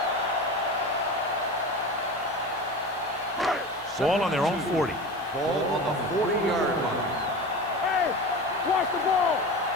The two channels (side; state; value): right; noise; hiss, 25 dB below the sound